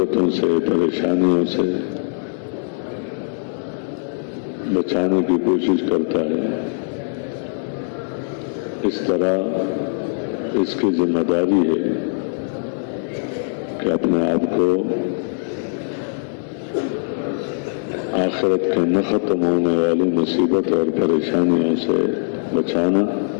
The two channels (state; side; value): silent; right; digital silence